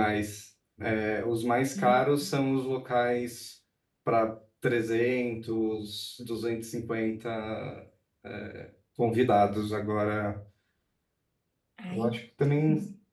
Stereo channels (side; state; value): both; identical; correlation 1.00